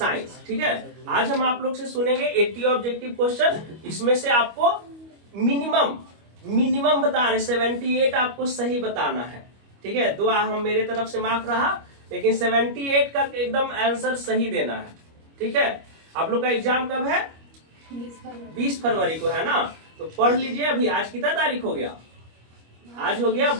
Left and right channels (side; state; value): left; late; 25 ms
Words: ठीक है, आज हम आप लोग से सुनेंगे 80 ऑब्जेक्टिव क्वेश्चन। इसमें से आपको मिनिमम बता रहे 78 आपको सही बताना है। ठीक है, दुआ हम मेरे तरफ से माफ रहा, लेकिन 78 का एकदम आंसर सही देना है। ठीक है, आप लोग का एग्जाम कब है? 20 फरवरी को है ना। तो पढ़ लीजिए। अभी आज कितना तारीख हो गया? आज हो गया